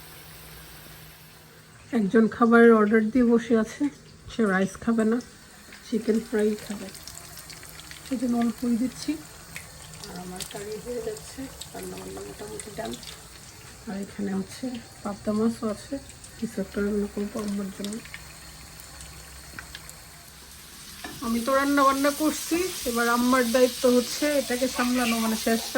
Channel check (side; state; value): both; identical; correlation 1.00